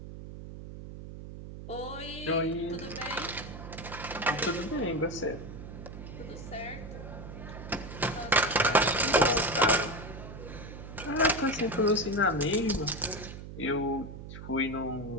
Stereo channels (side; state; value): right; noise; hum, 11 dB below the sound